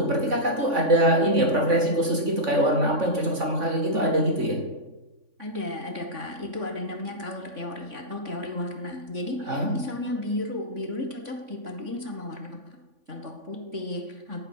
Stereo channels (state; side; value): late; left; 3.5 ms